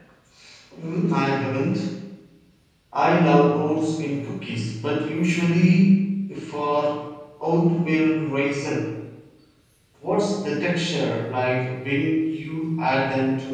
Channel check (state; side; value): identical; both; correlation 1.00